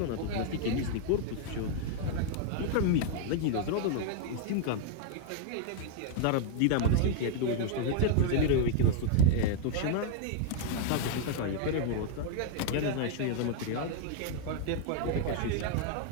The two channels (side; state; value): both; different; correlation 0.00